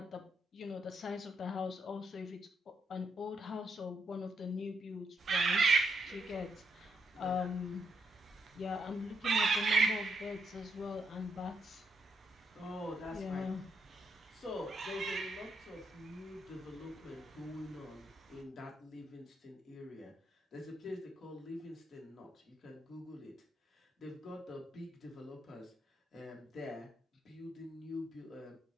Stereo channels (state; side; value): normal; both; correlation 0.78